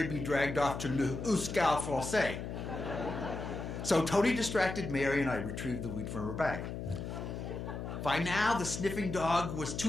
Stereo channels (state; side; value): noise; left; hum, 6 dB below the sound